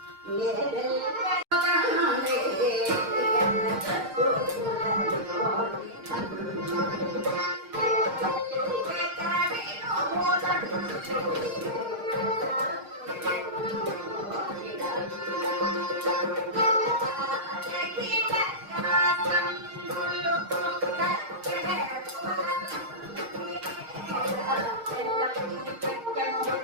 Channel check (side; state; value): left; late; 6.5 ms